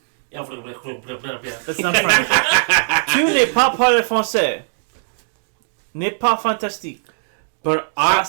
That's not French. Tu n'es pas parler français. N'est pas fantastique. But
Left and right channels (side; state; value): left; silent; digital silence